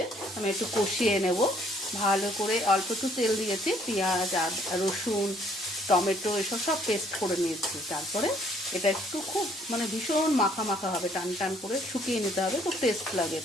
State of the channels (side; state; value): both; normal; correlation 0.63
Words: আমি একটু কষিয়ে নেব ভালো করে। অল্প একটু তেল দিয়েছি, পেঁয়াজ আর রসুন টমেটো এসব সব পেস্ট করে নিয়েছি। তারপরে এটা একটু খুব ভীষণ মাখা মাখা হবে, টান টান করে শুকিয়ে নিতে হবে, তো টেস্ট লাগে